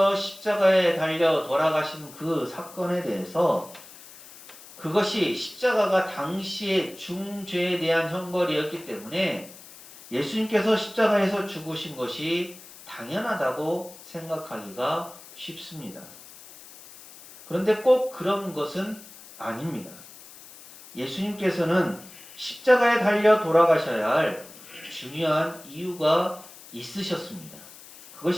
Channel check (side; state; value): left; noise; hiss, 19 dB below the sound